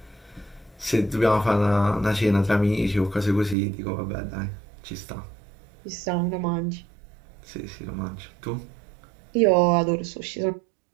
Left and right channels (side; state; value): left; drops out; at 3.6 s